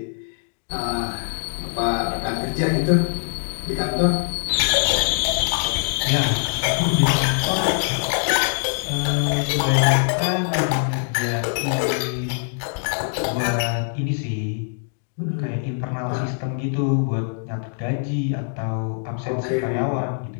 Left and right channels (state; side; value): silent; right; digital silence